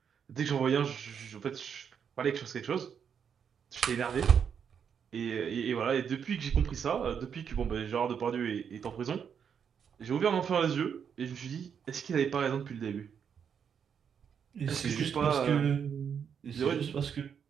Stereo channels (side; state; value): left; quieter; 7.4 dB